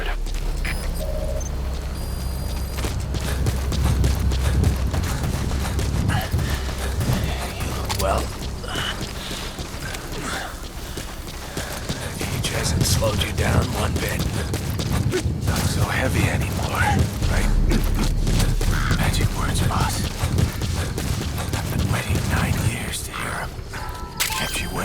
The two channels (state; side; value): identical; both; correlation 1.00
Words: Well, the cage hasn't slowed you down one bit. Not so heavy anymore, right? Magic words, boss. I've been waiting 9 years to hear them. Kept you